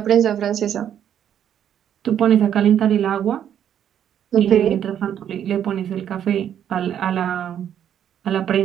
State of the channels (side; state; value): left; quieter; 9.7 dB